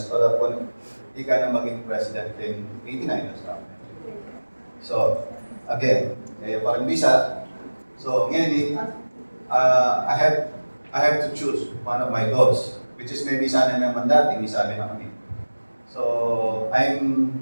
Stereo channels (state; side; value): inverted; both; correlation -1.00